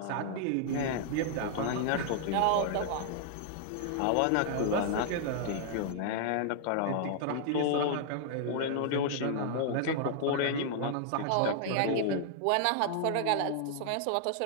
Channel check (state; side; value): different; both; correlation -0.01